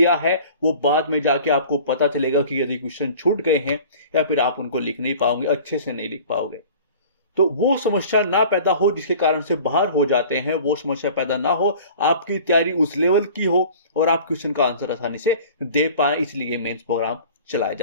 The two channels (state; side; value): inverted; both; correlation -0.44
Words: है वो बाद में जाके आपको पता चलेगा कि यदि क्वेश्चन छूट गए हैं या फिर आप उनको लिख नहीं पाओगे, अच्छे से नहीं लिख पाओगे। तो वो समस्या ना पैदा हो जिसके कारण से बाहर हो जाते हैं, वो समस्या पैदा ना हो, आपकी तैयारी उस लेवल की हो और आप क्वेश्चन का आंसर आसानी से दे पाए, इसलिए मेंस प्रोग्राम चलाया